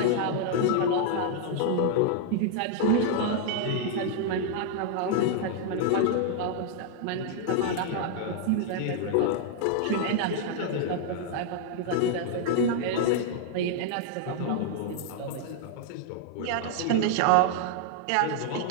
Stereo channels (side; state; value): both; different; correlation -0.01